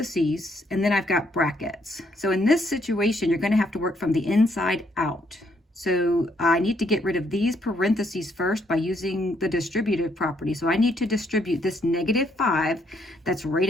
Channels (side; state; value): both; normal; correlation 0.71